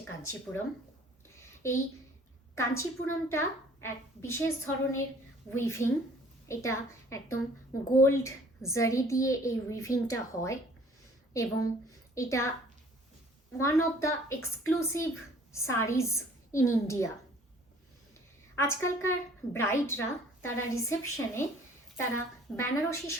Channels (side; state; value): both; normal; correlation 0.54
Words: কাঞ্চিপুরম। এই কাঞ্চিপুরমটা এক বিশেষ ধরনের উইভিং। এটা একদম গোল্ড জারি দিয়ে এই উইভিংটা হয় এবং এটা one of the exclusive sarees in India. আজকালকার ব্রাইডরা তারা রিসেপশনে তারা বেনারসি